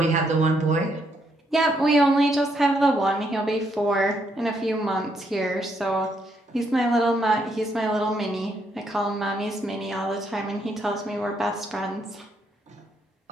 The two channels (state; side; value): normal; both; correlation 0.75